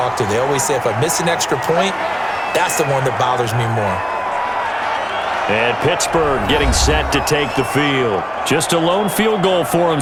to. They always say if I miss an extra point, that's the one that bothers me more. And Pittsburgh getting set to take the field. Just a lone field goal for them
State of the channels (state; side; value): identical; both; correlation 1.00